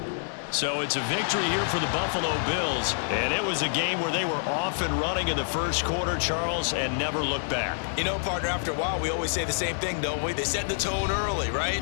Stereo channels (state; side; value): silent; right; digital silence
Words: So it's a victory here for the Buffalo Bills, and it was a game where they were off and running in the 1st quarter, Charles, and never looked back. You know, partner, after a while, we always say the same thing, don't we? They set the tone early,